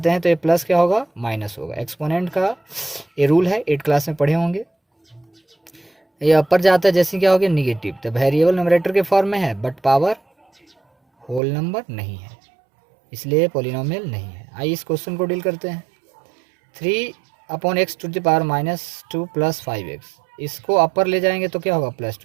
हैं तो ये प्लस क्या होगा, माइनस होगा। एक्सपोनेंट का ये रूल है, 8 क्लास में पढ़े होंगे। ये अपर जाता है जैसे क्या हो गया, निगेटिव। तो वेरिएबल न्यूमरेटर के फॉर्म में है बट पावर होल नंबर नहीं है, इसलिए पॉलिनोमियल नहीं है। आइए इस क्वेश्चन को डील करते हैं। 3/x -2 + 5x, इसको अपर ले जाएंगे तो क्या होगा, +2।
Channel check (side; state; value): left; drops out; at 11.4 s